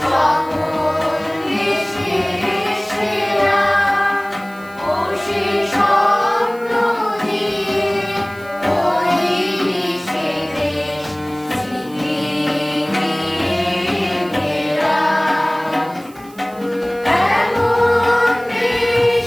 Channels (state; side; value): noise; right; hiss, 24 dB below the sound